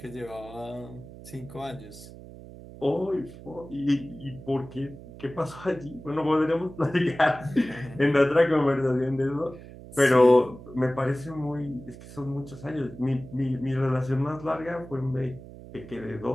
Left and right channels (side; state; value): right; noise; hum, 16 dB below the sound